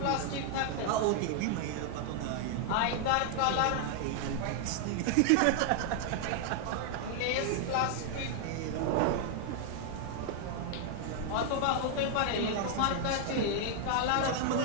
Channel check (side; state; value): both; different; correlation 0.00